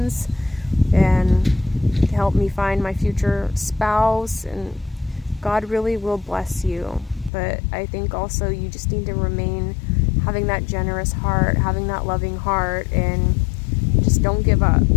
and help me find my future spouse, and God really will bless you. But I think also you just need to remain having that generous heart, having that loving heart, and just don't give up,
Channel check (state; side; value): drops out; right; at 7.3 s